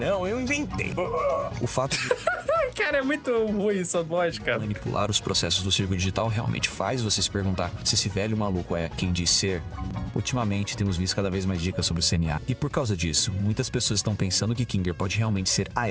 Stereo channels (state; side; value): identical; both; correlation 1.00